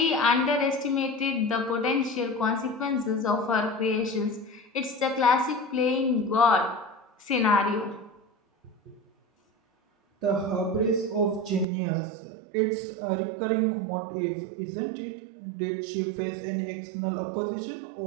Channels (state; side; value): drops out; left; at 11.7 s